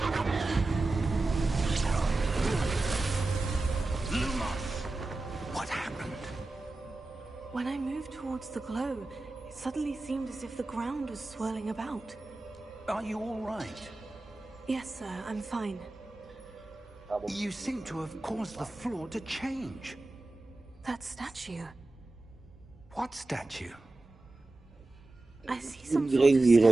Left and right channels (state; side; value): quieter; left; 3.0 dB